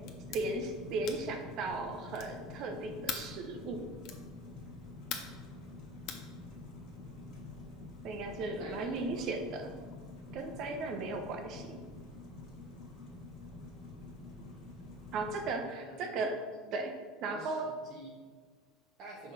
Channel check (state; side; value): normal; both; correlation 0.38